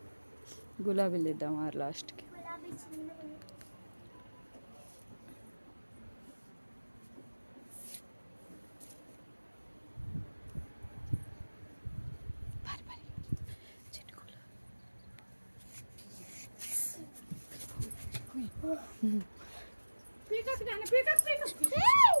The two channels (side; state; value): both; inverted; correlation -1.00